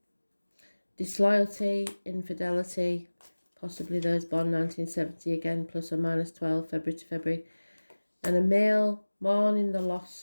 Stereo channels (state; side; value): inverted; both; correlation -1.00